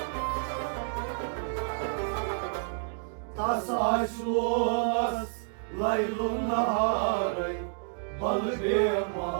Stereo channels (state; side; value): silent; left; digital silence